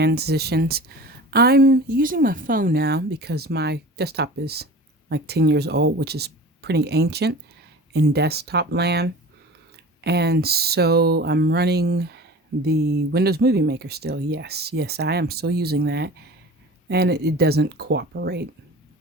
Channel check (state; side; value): normal; both; correlation 0.38